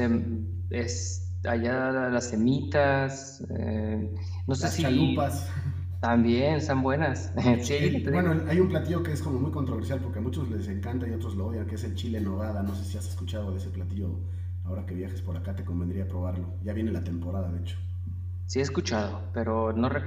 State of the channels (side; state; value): both; identical; correlation 1.00